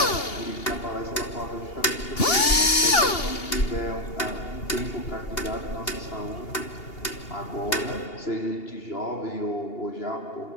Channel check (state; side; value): late; right; 2.8 ms